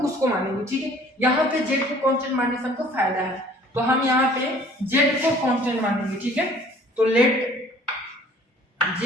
उसको मानेंगे। ठीक है, यहाँ पे z को कांस्टेंट मानने से हमको फायदा है, तो हम यहाँ पे z को कांस्टेंट मानेंगे। ठीक है, तो let z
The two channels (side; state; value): both; normal; correlation 0.54